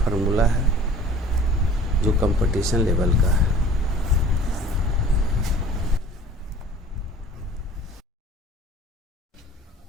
है जो कंपटीशन लेवल का है।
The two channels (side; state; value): both; normal; correlation 0.47